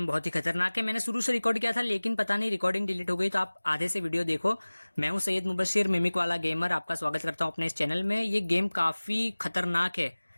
बहुत ही खतरनाक है। मैंने शुरू से रिकॉर्ड किया था लेकिन पता नहीं रिकॉर्डिंग डिलीट हो गई, तो आप आधे से वीडियो देखो। मैं हूं सैयद मुबशिर मिमिक वाला गेमर, आपका स्वागत करता हूं अपने इस चैनल में। ये गेम काफ़ी खतरनाक है।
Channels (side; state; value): both; inverted; correlation -1.00